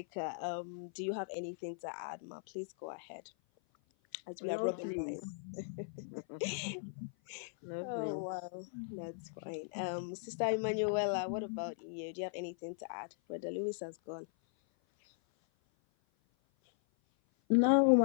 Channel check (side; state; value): right; silent; 52 dB below the other